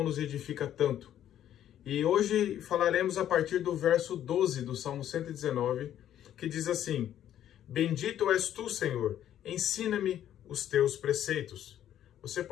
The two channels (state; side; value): quieter; right; 11.1 dB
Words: nos edifica tanto. E hoje falaremos a partir do verso 12 do Salmo 119, que diz assim: Bendito és tu, Senhor, ensina-me os teus preceitos. Você